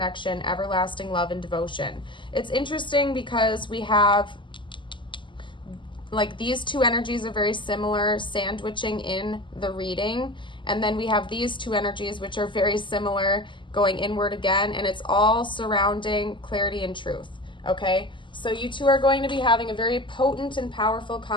everlasting love and devotion. It's interesting because we have, like, these two energies are very similar, sandwiching in the reading. And then we have these two energies, which are very similar, going inward again. And it's all surrounding clarity and truth, okay? So you two are going to be having a very potent and powerful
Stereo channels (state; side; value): late; right; 0.24 ms